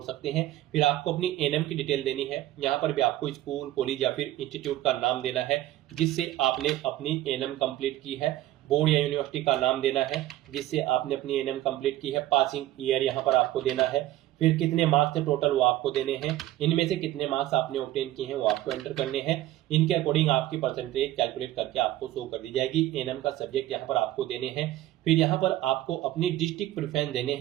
सकते हैं। फिर आपको अपनी एनएम की डिटेल देनी है, यहाँ पर भी आपको स्कूल, कॉलेज या फिर इंस्टीट्यूट का नाम देना है जिससे आपने अपनी एनएम कंप्लीट की है, बोर्ड या यूनिवर्सिटी का नाम देना है जिससे आपने अपनी एनएम कंप्लीट की है, पासिंग ईयर यहाँ पर आपको देना है, फिर कितने मार्क्स थे टोटल वो आपको देने हैं, इनमें से कितने मार्क्स आपने ऑब्टेन किए हैं वो आपको एंटर करने हैं। इनके अकॉर्डिंग आपकी परसेंटेज कैलकुलेट करके आपको शो कर दी जाएगी। एनएम का सब्जेक्ट यहाँ पर आपको देने हैं। फिर यहाँ पर आपको अपनी डिस्ट्रिक्ट प्रेफरेंस देने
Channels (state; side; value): quieter; left; 14.7 dB